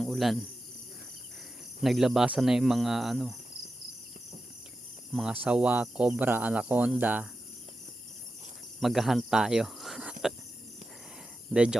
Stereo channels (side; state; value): both; normal; correlation 0.91